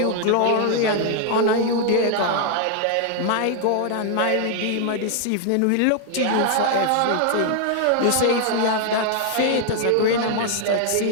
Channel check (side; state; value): both; different; correlation 0.00